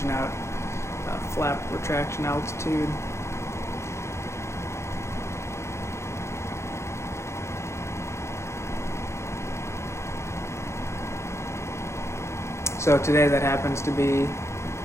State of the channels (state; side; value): late; right; 0.13 ms